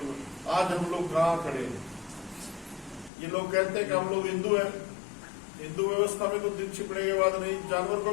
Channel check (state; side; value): drops out; right; at 3.1 s